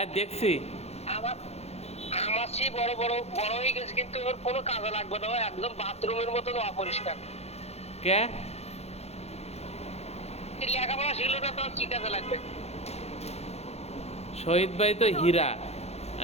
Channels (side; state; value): right; late; 0.31 ms